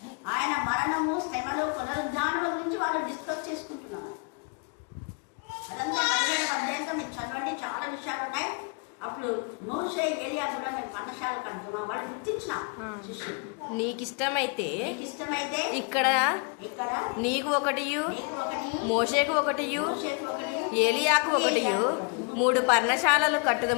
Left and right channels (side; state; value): right; quieter; 36.2 dB